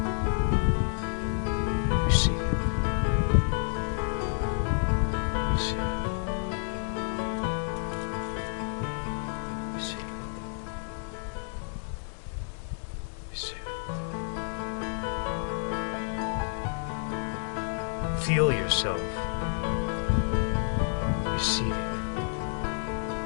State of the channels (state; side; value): silent; right; 58 dB below the other